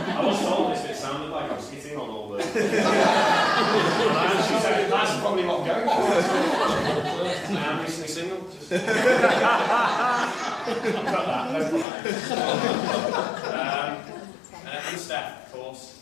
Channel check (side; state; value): right; drops out; at 11.9 s